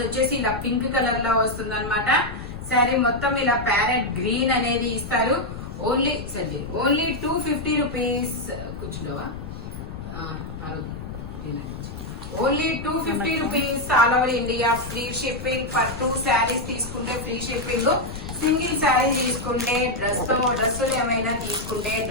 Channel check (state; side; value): noise; left; rumble, 10 dB below the sound